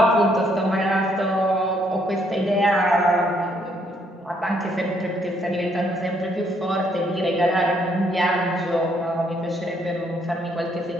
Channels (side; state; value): both; normal; correlation 0.70